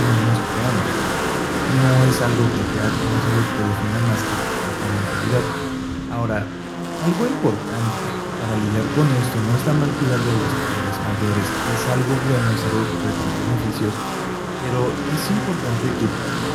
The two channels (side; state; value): both; identical; correlation 1.00